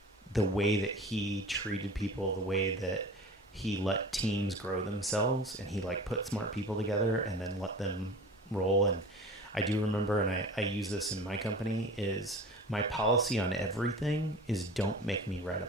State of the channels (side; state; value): both; normal; correlation 0.38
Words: The way that he treated people, the way that he let teams grow themselves, and he like put smart people together and then let them roll. And I do remember, and I use this in my company, is my policy on everything is don't make me write a